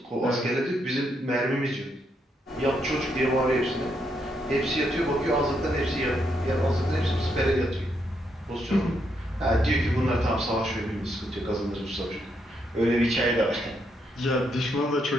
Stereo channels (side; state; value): both; normal; correlation 0.77